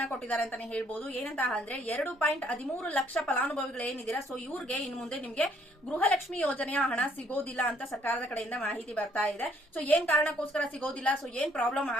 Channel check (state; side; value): normal; both; correlation 0.65